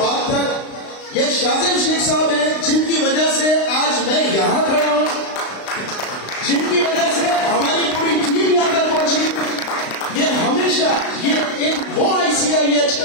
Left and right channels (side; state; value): right; late; 35 ms